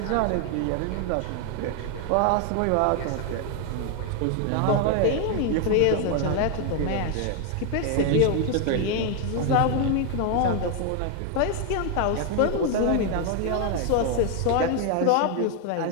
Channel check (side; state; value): both; different; correlation 0.01